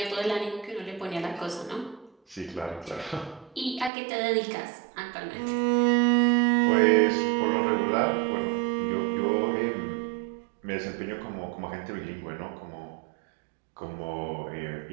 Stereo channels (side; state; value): left; drops out; at 3.9 s